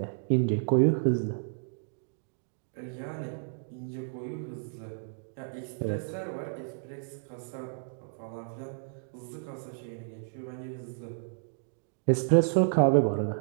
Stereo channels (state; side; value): silent; left; digital silence